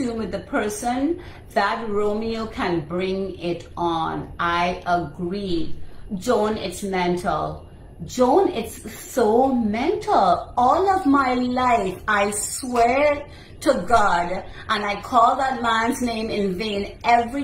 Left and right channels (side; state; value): both; identical; correlation 1.00